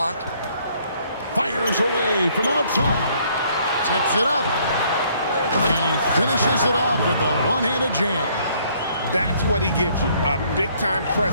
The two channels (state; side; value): inverted; both; correlation -0.64